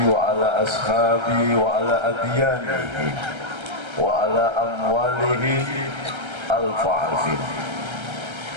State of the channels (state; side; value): late; left; 1.3 ms